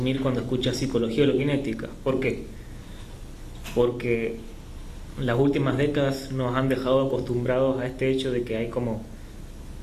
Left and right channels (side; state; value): both; identical; correlation 1.00